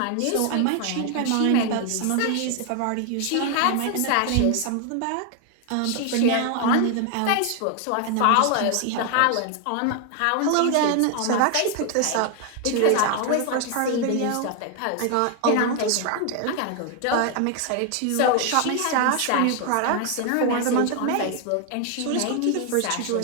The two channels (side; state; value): both; different; correlation 0.00